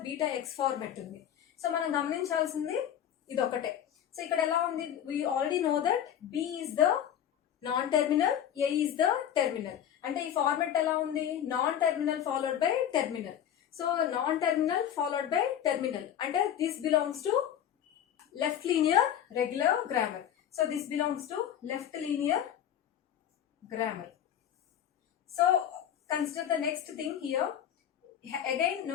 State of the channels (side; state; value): right; quieter; 10.0 dB